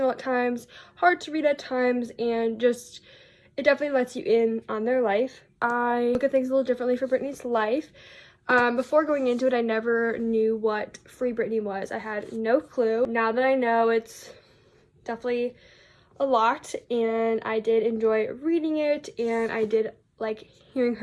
at times, hard to read at times, and just it definitely lets you in on their life. I look at things a little differently for Britney's life. Before going into it, I never knew what Free Britney was. I had no clue. Now that I know, it's definitely a lot, and I did enjoy reading it, and I did like hearing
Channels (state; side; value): identical; both; correlation 1.00